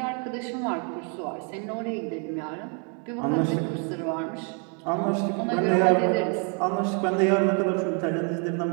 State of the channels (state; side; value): quieter; left; 38.2 dB